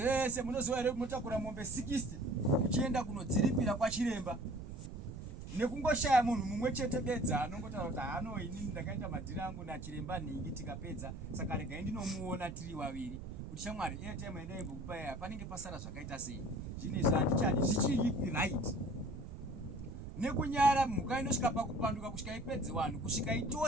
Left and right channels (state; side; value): noise; right; rumble, 10 dB below the sound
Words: munoziva here munotakura mombe 60 muchienda kunodziripira kwachiremba nekungoshaya munhu mumwe chete bedza anongotaura kuti hano inini ndakaita madhiri angu nachiremba nhingi tikapedza, saka regai ndinomuona tiri vaviri kuti shamwari airtime yandaimbokupai apa panenge pasara zvakaita sei. Zvinhu izvi handichadi zvichiri right. Nekunyara mhuka inosvika pakupanduka kusvika ipedze vanhu kusvika